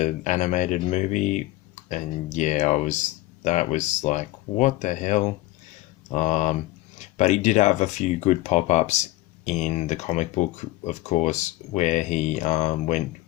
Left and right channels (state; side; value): quieter; right; 18.1 dB